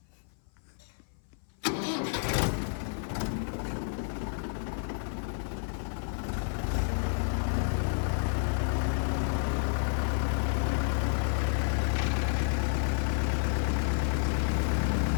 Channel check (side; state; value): right; silent; 57 dB below the other